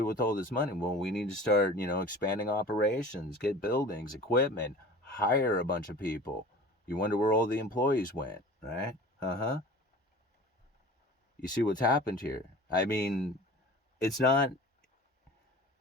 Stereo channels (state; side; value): normal; both; correlation 0.40